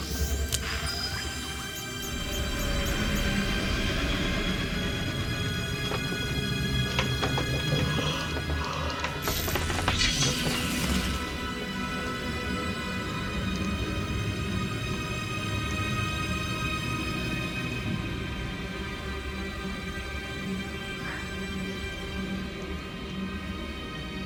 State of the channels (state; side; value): identical; both; correlation 1.00